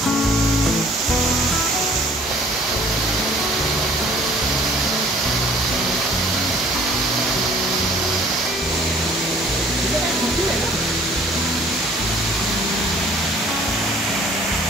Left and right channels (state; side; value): normal; both; correlation 0.54